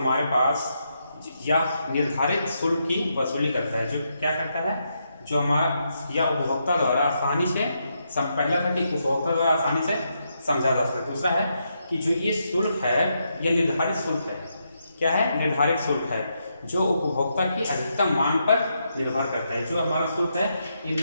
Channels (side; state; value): both; inverted; correlation -0.81